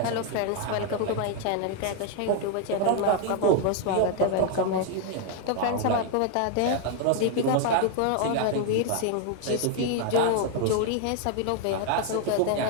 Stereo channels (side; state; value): both; different; correlation 0.00